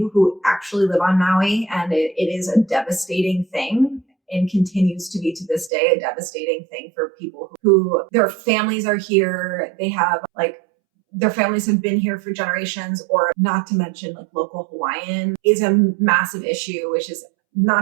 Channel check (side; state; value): left; drops out; at 5.7 s